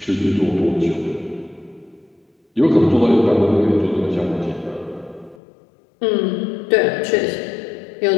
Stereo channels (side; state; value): right; drops out; at 5.4 s